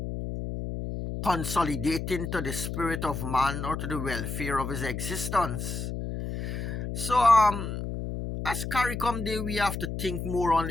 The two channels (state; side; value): noise; left; hum, 5 dB below the sound